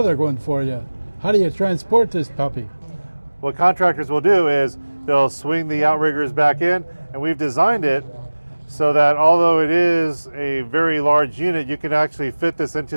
one for you. How do you transport this puppy? What contractors will do is they'll swing the outriggers back in, and we've designed it so that although it is a very large unit, you can actually fit this into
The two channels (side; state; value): both; inverted; correlation -1.00